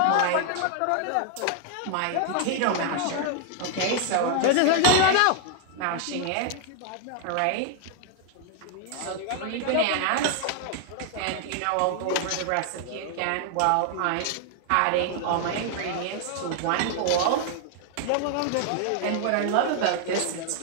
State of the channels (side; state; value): both; different; correlation 0.00